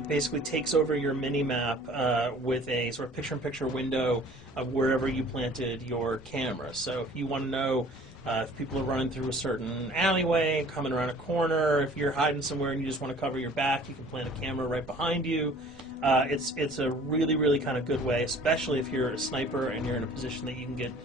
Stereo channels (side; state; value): both; normal; correlation 0.50